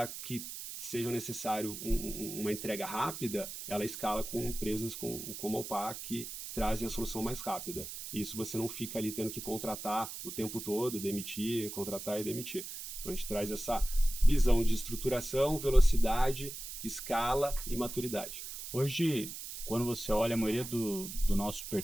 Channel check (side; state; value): right; noise; hiss, 9 dB below the sound